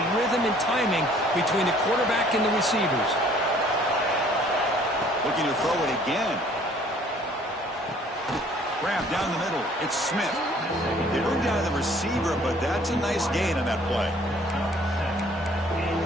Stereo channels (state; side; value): normal; both; correlation 0.57